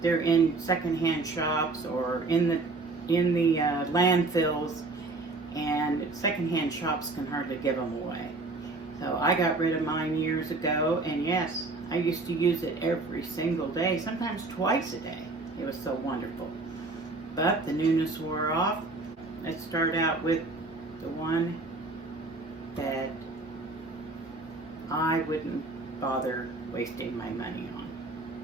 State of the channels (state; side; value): quieter; left; 3.4 dB